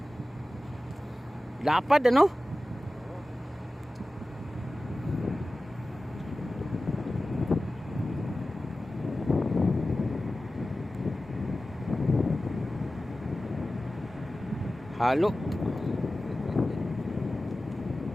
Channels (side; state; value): both; normal; correlation 0.96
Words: Lapad ano? Halo.